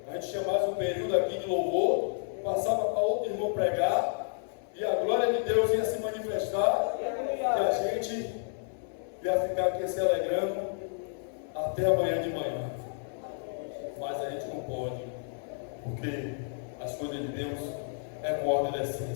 A gente tinha mais um período aqui de louvor, passava para outro irmão pregar, e a glória de Deus ia se manifestar, e a gente ia ficar aqui se alegrando até amanhã de manhã. Mas a gente não pode, porque as coisas de Deus é com ordem da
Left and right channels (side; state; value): right; silent; digital silence